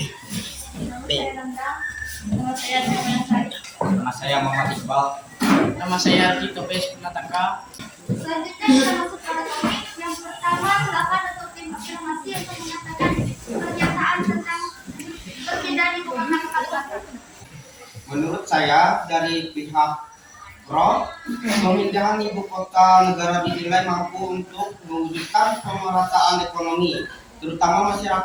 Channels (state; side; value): identical; both; correlation 1.00